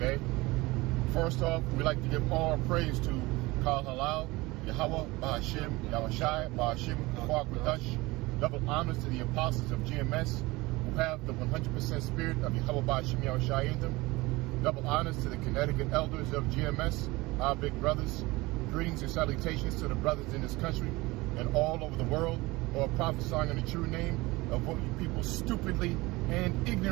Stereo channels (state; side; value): quieter; left; 21.7 dB